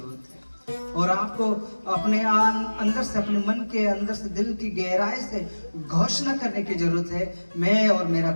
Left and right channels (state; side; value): inverted; both; correlation -1.00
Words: है, और आपको अपने अंदर से, अपने मन के अंदर से, दिल की गहराई से घोषणा करने की जरूरत है, मैं और मेरा